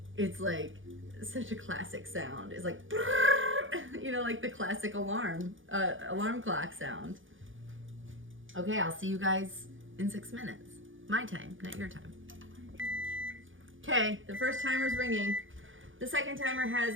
it's like such a classic sound. It's like, you know, like the classic alarm clock sound. Okay, I'll see you guys in 6 minutes. My time, not your time. Okay, the first timer's ringing. The second timer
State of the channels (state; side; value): late; left; 0.57 ms